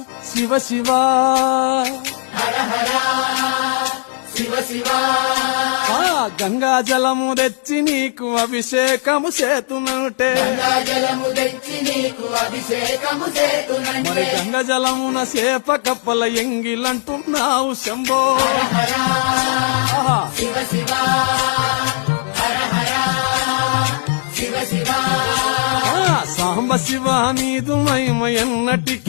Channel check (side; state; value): right; silent; digital silence